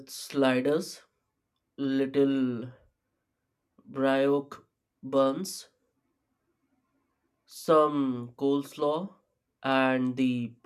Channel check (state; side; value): identical; both; correlation 1.00